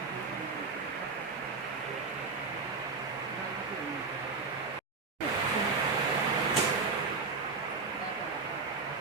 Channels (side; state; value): left; quieter; 4.4 dB